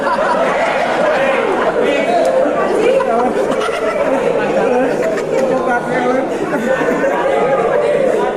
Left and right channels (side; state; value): left; noise; rumble, 25 dB below the sound